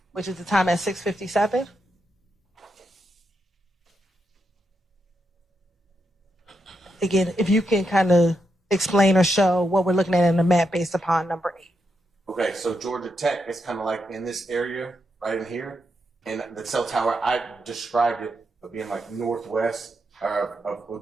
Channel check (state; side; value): normal; both; correlation 0.83